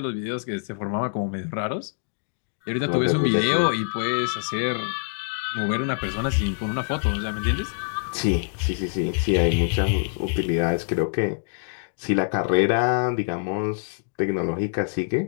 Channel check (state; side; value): silent; right; digital silence